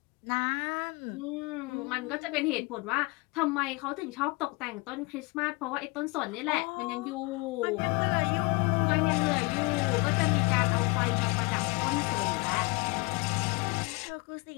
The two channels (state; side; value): quieter; right; 27.1 dB